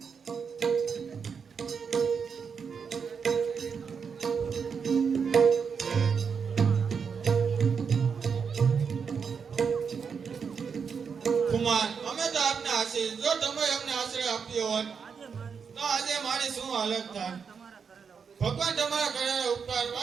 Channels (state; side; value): quieter; left; 6.2 dB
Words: કુમાર, અમે તો આપને આશીષ. જો તમે અમને આશ્રય આપ્યો હોત તો આજે મારી શું હાલત થાય. ભગવાન તમારા કરેલા ઉપકાર